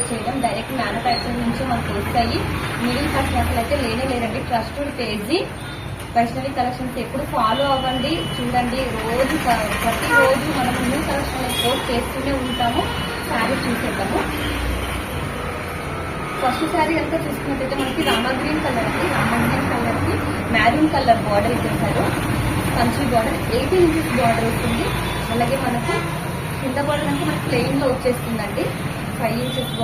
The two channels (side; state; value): both; identical; correlation 1.00